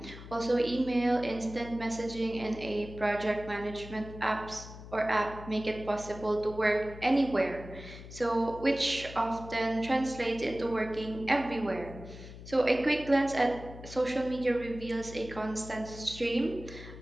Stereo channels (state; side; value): noise; left; hum, 14 dB below the sound